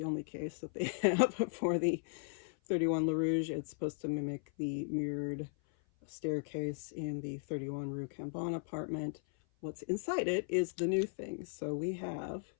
only case that they have for the 31 Le Rouge. It's supposed to mimic the mirrored staircase in the 31 Rue Cambon apartment. What's inside it is the new thing. So we have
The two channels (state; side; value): silent; right; 53 dB below the other